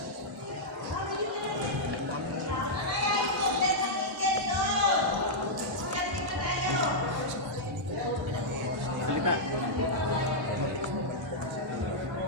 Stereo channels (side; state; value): both; normal; correlation -0.08